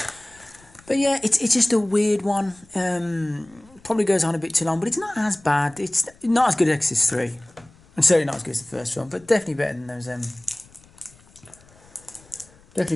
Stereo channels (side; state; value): left; noise; rumble, 27 dB below the sound